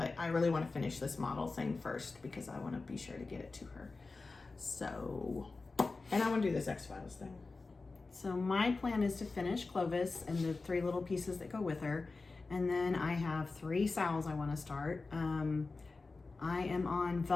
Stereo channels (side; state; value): right; quieter; 3.8 dB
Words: I really want to finish this model thing first because I want to be sure to get it to her. So, and I want to do this X-Files thing. So my plan is to finish Clovis and the 3 little pieces that go with her. And then I have 3 Sals I want to start. I am on